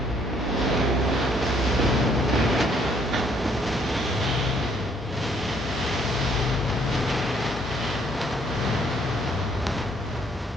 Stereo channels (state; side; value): normal; both; correlation 0.66